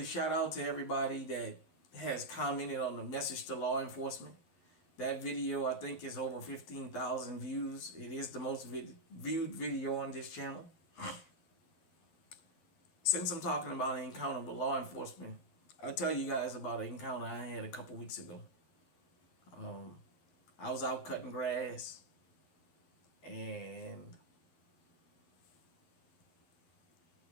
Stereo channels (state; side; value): late; right; 11 ms